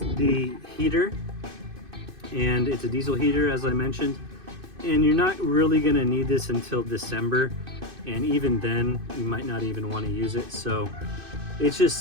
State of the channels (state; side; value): late; left; 2.6 ms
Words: the heater. and it's a diesel heater, as I mentioned, and you're not really going to need this until December, and even then you might not even want to use it. So it's just